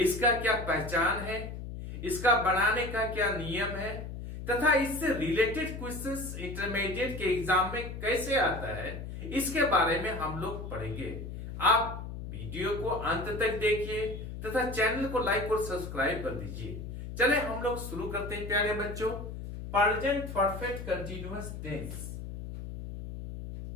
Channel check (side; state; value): left; noise; hum, 8 dB below the sound